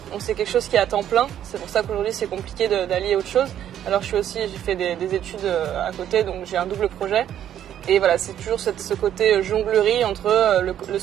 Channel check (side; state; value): left; quieter; 10.6 dB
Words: Donc c'est quelque chose qui est à temps plein. C'est pour ça qu'aujourd'hui, c'est compliqué d'allier autre chose. Alors j'ai fait des études à côté, donc j'ai un double projet. Et voilà, c'est toujours ce côté jonglerie entre le